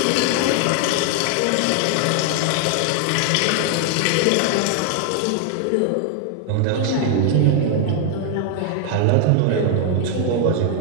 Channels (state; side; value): different; both; correlation 0.00